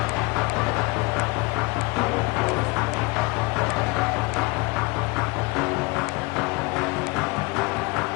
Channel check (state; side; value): quieter; right; 25.4 dB